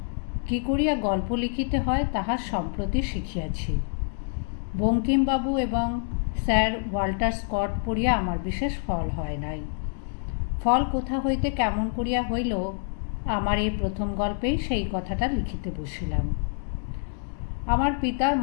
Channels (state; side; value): silent; right; 60 dB below the other